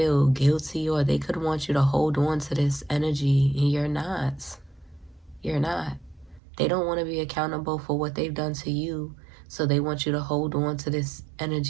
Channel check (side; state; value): left; drops out; at 6.4 s